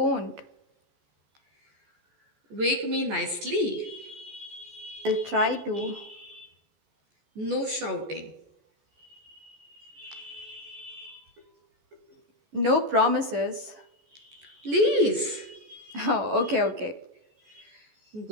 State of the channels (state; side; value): late; left; 14 ms